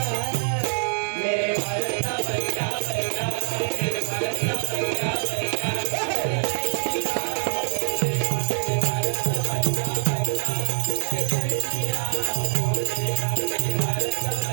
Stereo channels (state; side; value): silent; left; 62 dB below the other